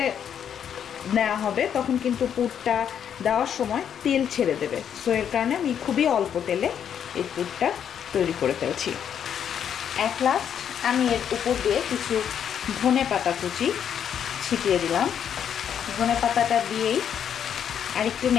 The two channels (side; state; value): right; quieter; 8.6 dB